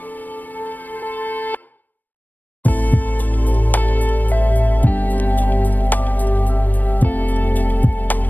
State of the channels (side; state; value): right; late; 0.087 ms